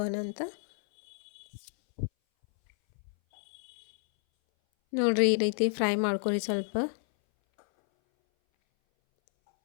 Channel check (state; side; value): silent; right; 58 dB below the other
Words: ಅಂತ. ನೋಡಿರಿ, ಈ ರೀತಿ ಫ್ರೈ ಮಾಡ್ಕೊಳ್ಳಿ ಸ್ವಲ್ಪ.